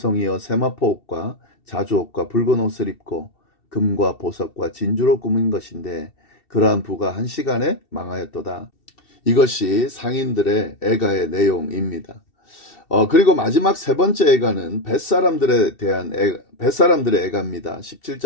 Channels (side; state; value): right; late; 2.7 ms